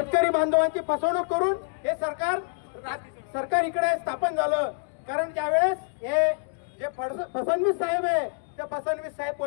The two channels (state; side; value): silent; right; digital silence